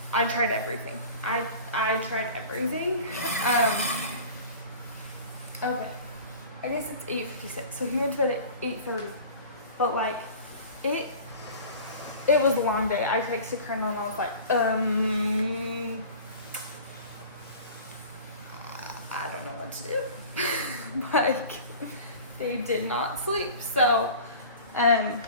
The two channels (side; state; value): both; inverted; correlation -0.40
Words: I tried everything. I tried everything. Okay. I guess it's 8:56. So he went to bed at 8:30. But like, it was a long day. I texted Colonel and I was like, I don't know what to do. Like, they did not sleep. So, that